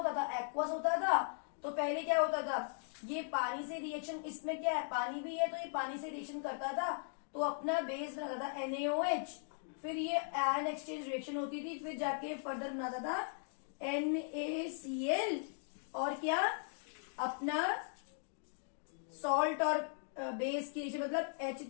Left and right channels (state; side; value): silent; right; digital silence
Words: था, एक्वस होता था। तो पहले क्या होता था, ये पानी से रिएक्शन, इसमें क्या है, पानी भी है, तो ये पानी से रिएक्शन करता था, तो अपना बेस बनाता था NaOH। फिर ये आयन एक्सचेंज रिएक्शन होती थी, फिर जाके फर्दर बनाता था NaCl, और क्या अपना सॉल्ट और बेस की रिएक्शन, मतलब